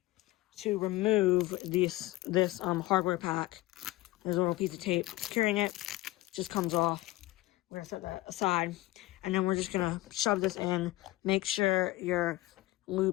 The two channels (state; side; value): quieter; right; 18.6 dB